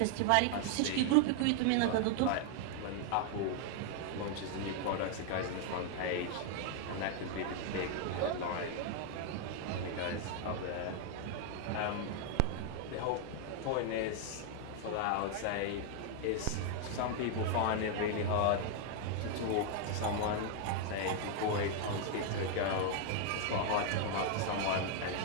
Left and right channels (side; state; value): both; different; correlation 0.00